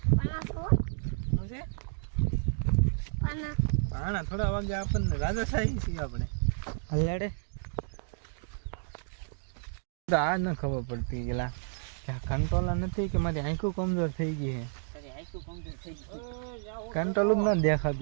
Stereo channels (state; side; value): silent; left; digital silence